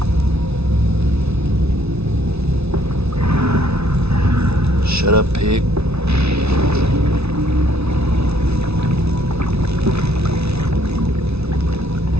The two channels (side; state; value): left; late; 0.80 ms